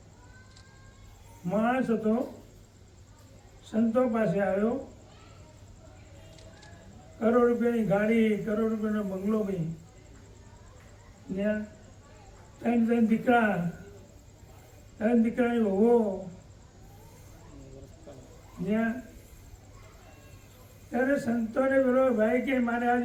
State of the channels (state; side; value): identical; both; correlation 1.00